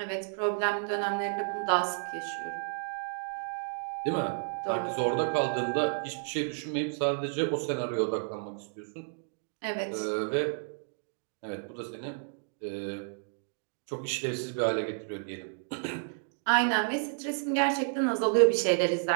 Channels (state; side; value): silent; left; digital silence